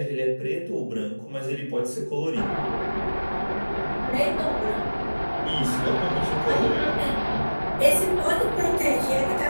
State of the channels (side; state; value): both; inverted; correlation -1.00